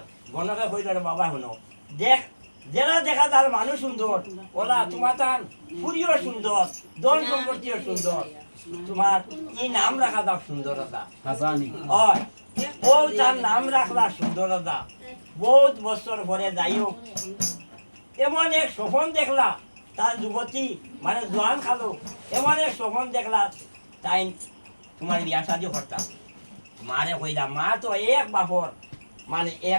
গণকে কইল বাবা শুনো দেখ যারা দেখা তার মানুষ সুন্দর ওলা তোমার তার পুরিও সুন্দর দল সম্পত্তিও সুন্দর তোমার এই নাম রাখা দাও সুন্দরতা ও তার নাম রাখলা সুন্দরতা বহুত বছর পরে যাই হোক এমন এক স্বপন দেখলা তার যুবতী মানে জোয়ান খালো এমন এক স্বপন দেখলা তাই তোমার বিয়া শাদি করতাম মারে কইলা মা তো এক বাপর মানে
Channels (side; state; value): both; inverted; correlation -1.00